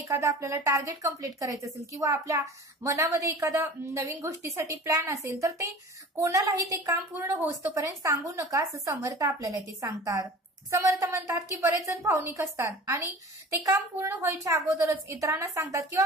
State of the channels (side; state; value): both; normal; correlation 0.40